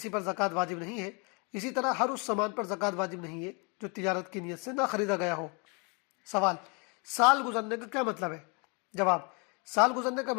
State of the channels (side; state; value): right; quieter; 32.7 dB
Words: پر زکوٰۃ واجب نہیں ہے۔ اسی طرح ہر اس سامان پر زکوٰۃ واجب نہیں ہے جو تجارت کی نیت سے نہ خریدا گیا ہو۔ سوال: سال گزرنے کا کیا مطلب ہے؟ جواب: سال گزرنے کا